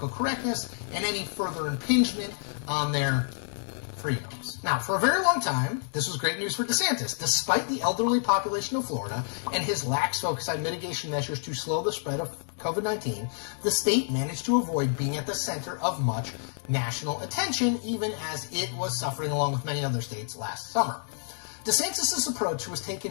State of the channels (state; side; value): silent; right; digital silence